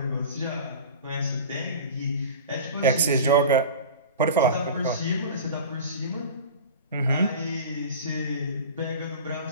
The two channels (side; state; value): both; inverted; correlation -0.34